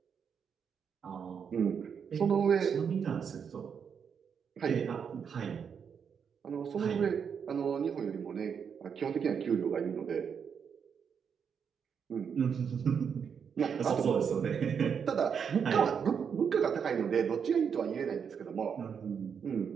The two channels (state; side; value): quieter; left; 7.0 dB